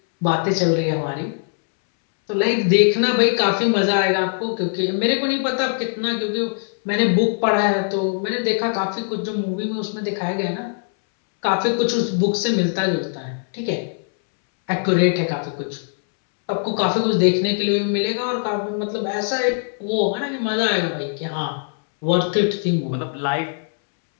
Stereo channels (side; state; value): right; silent; 65 dB below the other